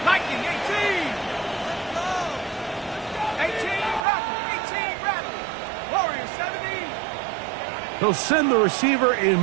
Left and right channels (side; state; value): left; drops out; at 4.0 s